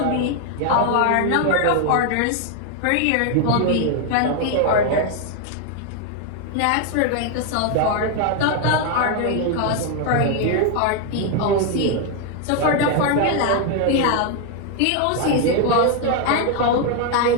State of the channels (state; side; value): different; both; correlation 0.01